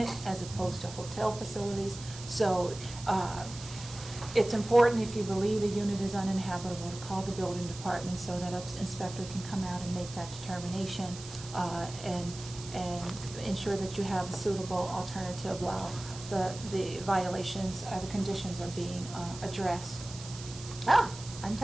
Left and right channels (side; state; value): right; noise; hiss, 14 dB below the sound